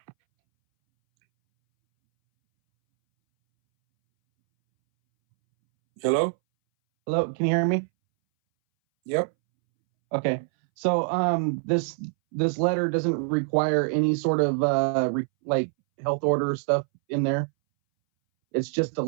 Hello? Hello, can you hear me? Yep. Okay. So this letter doesn't require any sort of health order stuff in there. It's just a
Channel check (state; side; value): silent; left; 62 dB below the other